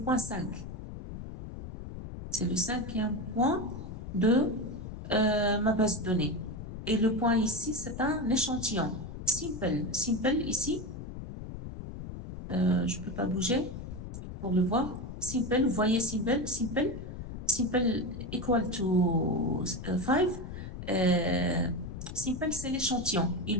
C'est le cinquième point de ma base de données. Et le point ici, c'est un échantillon. Simple. Simple ici. Je ne peux pas bouger pour le voir. Simple, vous voyez simple, simple, simple equal to 5. Simple, c'est l'échantillon.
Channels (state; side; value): noise; left; rumble, 9 dB below the sound